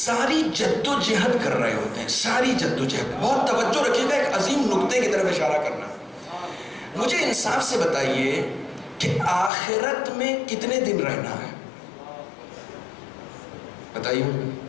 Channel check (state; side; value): drops out; right; at 9.5 s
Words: جد و جہد کر رہے ہوتے ہیں. ساری جد و جہد, بہت توجہ رکھیے گا, ایک عظیم نقطے کی طرف اشارہ کرنا. مجھے انصاف سے بتائیے کہ آخرت میں کتنے دن رہنا ہے؟ بتائیے